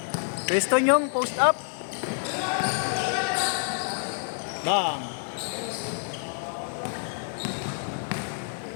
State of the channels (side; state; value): right; silent; 60 dB below the other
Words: Pwesto nyong, post up. Bang!